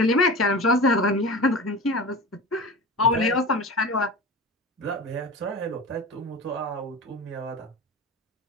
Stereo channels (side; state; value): both; normal; correlation 0.31